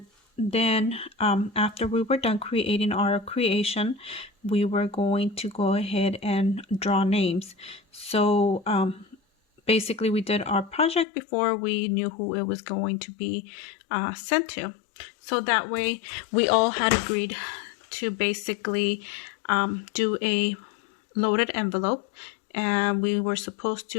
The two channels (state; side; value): drops out; right; at 11.1 s